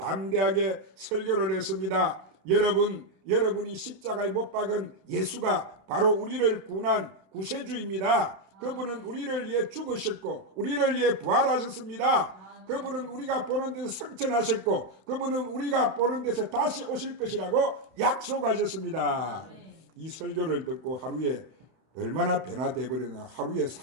설교를 했습니다. 여러분이 십자가에 못 박은 예수가 바로 우리를 구원한 구세주입니다. 그분은 우리를 위해 죽으셨고 우리를 위해 부활하셨습니다. 그분은 우리가 보는 데서 성천하셨고 그분은 우리가 보는 데서 다시 오실 것이라고 약속하셨습니다. 이 설교를 듣고 하루에 얼마나 변화돼 버렸나. 하루에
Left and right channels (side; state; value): left; late; 31 ms